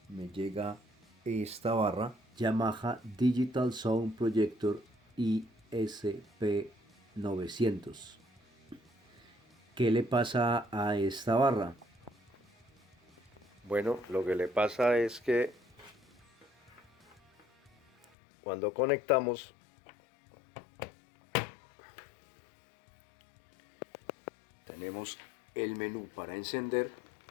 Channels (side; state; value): right; drops out; at 18.1 s